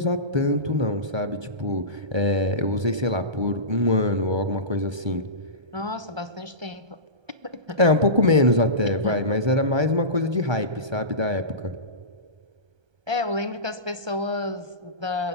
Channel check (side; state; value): left; late; 1.3 ms